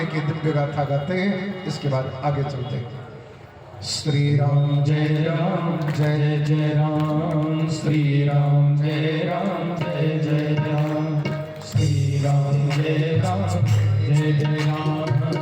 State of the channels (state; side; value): identical; both; correlation 1.00